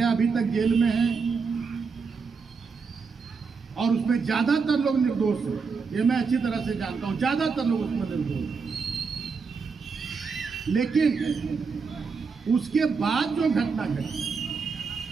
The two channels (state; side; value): quieter; left; 5.1 dB